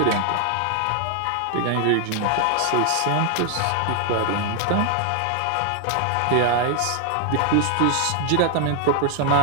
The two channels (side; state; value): both; different; correlation 0.00